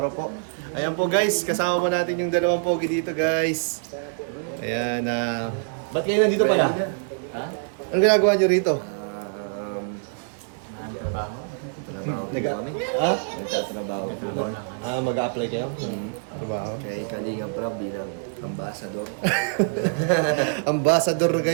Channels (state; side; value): silent; left; digital silence